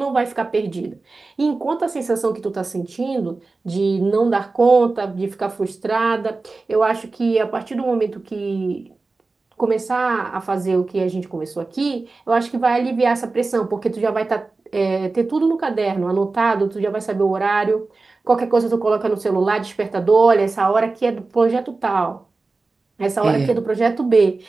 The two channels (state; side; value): quieter; left; 3.7 dB